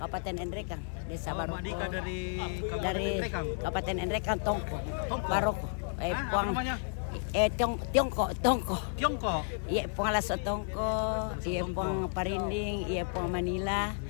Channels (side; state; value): right; silent; digital silence